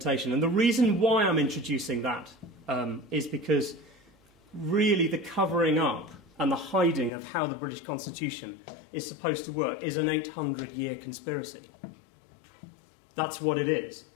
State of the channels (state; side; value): drops out; right; at 7.1 s